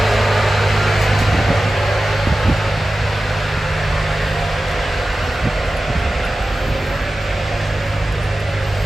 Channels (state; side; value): normal; both; correlation 0.95